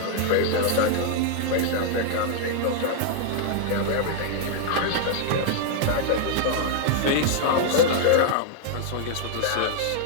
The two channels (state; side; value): different; both; correlation -0.01